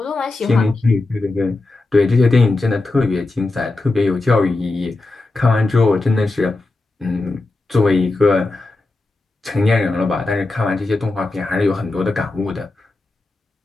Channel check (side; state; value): right; quieter; 3.1 dB